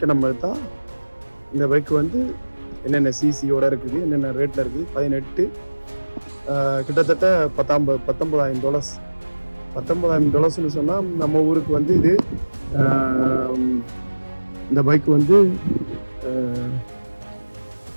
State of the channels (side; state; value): both; inverted; correlation -1.00